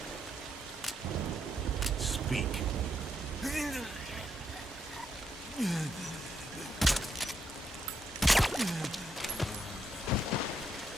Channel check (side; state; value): both; normal; correlation 0.78